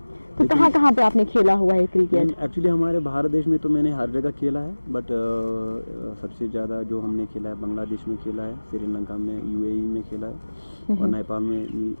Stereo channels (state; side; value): inverted; both; correlation -1.00